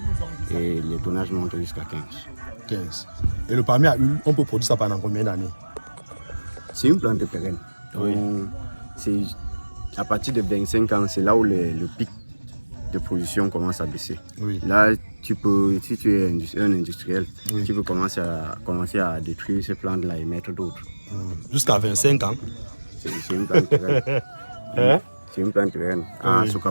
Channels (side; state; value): both; inverted; correlation -1.00